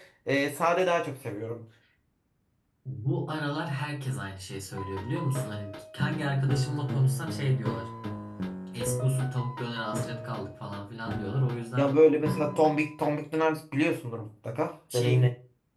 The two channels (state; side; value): identical; both; correlation 1.00